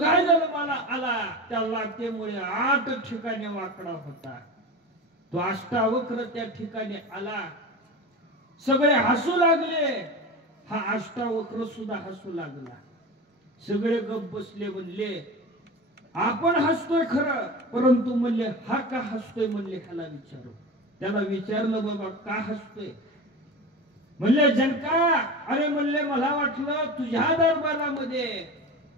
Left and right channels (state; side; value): normal; both; correlation 0.28